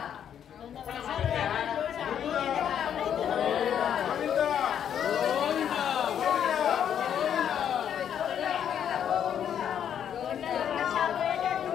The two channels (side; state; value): right; quieter; 9.1 dB